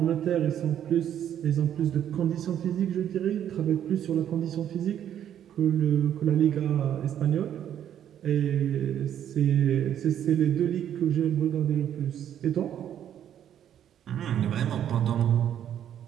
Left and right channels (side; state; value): left; quieter; 10.1 dB